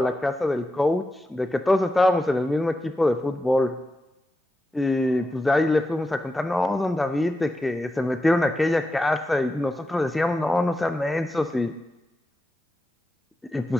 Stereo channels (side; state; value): both; normal; correlation 0.90